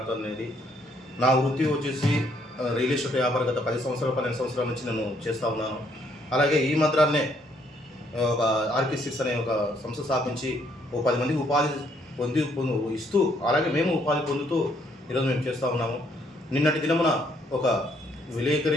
అనేది. నా వృత్తి వచ్చేసి రియల్ ఎస్టేట్ వ్యాపారం. గత 10 సంవత్సరాలు 12 సంవత్సరాల నుంచి నేను చేస్తూ ఉన్నాను. అలాగే ఈ మధ్యనే ఒక ఆర్కే6 అనే ఒక సంస్థ స్థాపించి ఓ 10 మందికి ఉపాధి ఇస్తూ, అలాగే మేము ఉపాధి పొందుతూ ఈరోజు మేము చేస్తూ ఉన్నాము. నిన్నటి దినమున ఒక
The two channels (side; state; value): both; normal; correlation 0.69